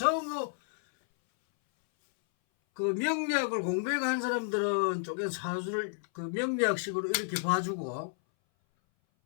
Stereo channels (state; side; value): silent; right; 57 dB below the other